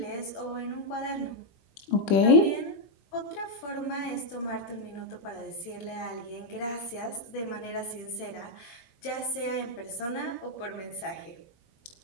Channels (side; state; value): right; late; 21 ms